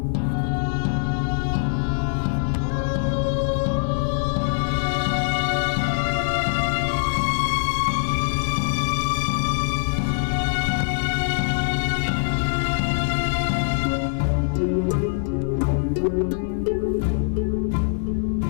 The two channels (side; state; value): right; silent; 63 dB below the other